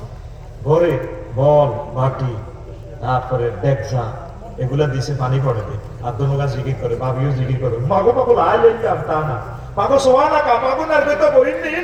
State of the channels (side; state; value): both; identical; correlation 1.00